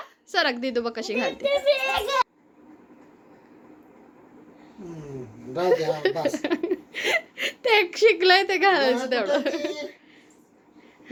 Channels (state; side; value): identical; both; correlation 1.00